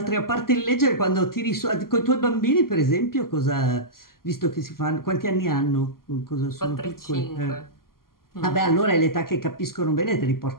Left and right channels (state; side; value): late; right; 0.92 ms